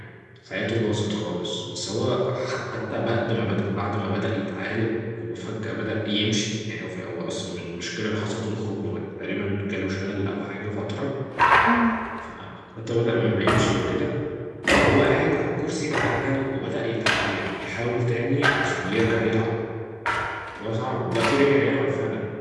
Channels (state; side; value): identical; both; correlation 1.00